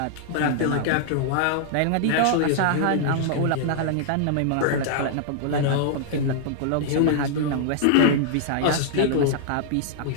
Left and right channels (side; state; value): both; different; correlation -0.01